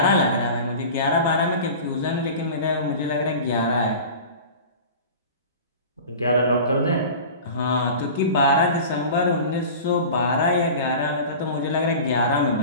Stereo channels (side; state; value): both; inverted; correlation -0.36